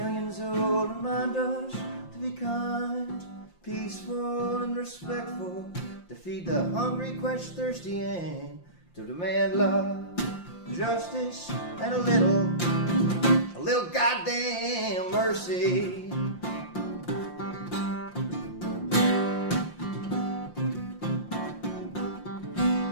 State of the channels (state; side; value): late; right; 5.7 ms